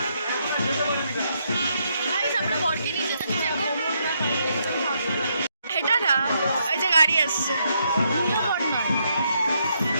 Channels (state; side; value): inverted; both; correlation -0.76